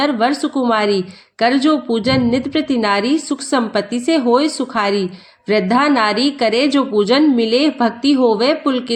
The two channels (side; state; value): both; identical; correlation 1.00